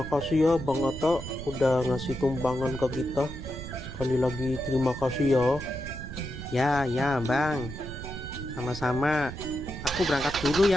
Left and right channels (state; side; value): noise; right; rumble, 9 dB below the sound